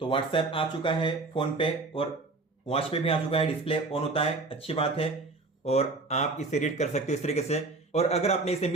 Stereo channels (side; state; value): left; quieter; 3.5 dB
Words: तो व्हाट्सएप आ चुका है फोन पे, और वॉच पे भी आ चुका है, डिस्प्ले ऑन होता है, अच्छी बात है। और आप इसे रीड कर सकते हो इस तरीके से। और अगर आपने इसे